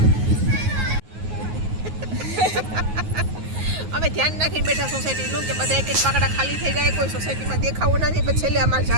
અમે ધ્યાન રાખીને બેઠા સોસાયટીનું કે બધા એક એક પાકડા ખાલી થઈ જાય કોઈ સોસાયટીમાં દેખાવું ના જાય પછી છેલ્લે અમારે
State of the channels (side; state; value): left; late; 9.4 ms